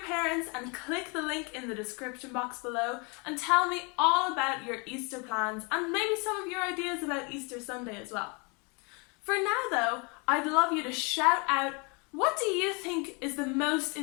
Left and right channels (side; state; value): right; quieter; 31.9 dB